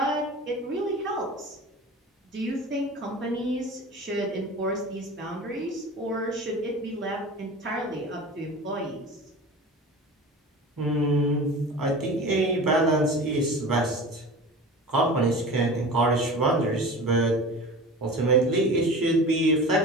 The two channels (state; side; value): normal; both; correlation 0.35